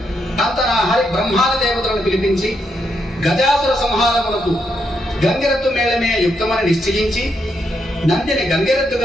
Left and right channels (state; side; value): normal; both; correlation 0.80